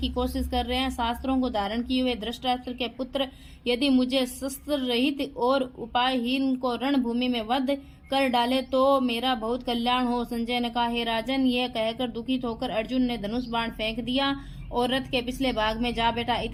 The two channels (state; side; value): identical; both; correlation 1.00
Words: कोशिश कर रहे हैं। शास्त्रों को धारण किए हुए धृतराष्ट्र के पुत्र यदि मुझे शस्त्र रहित और उपायहीन को रणभूमि में वध कर डाले तो मेरा बहुत कल्याण हो। संजय ने कहा, हे राजन, यह कहकर दुखित होकर अर्जुन ने धनुष बाण फेंक दिया और रथ के पिछले भाग में जा बैठा।